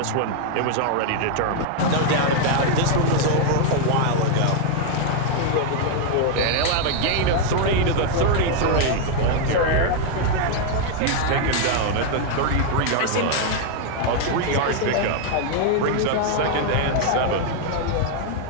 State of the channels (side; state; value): both; different; correlation 0.00